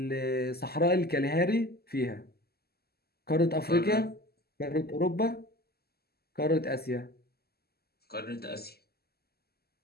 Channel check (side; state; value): right; late; 0.46 ms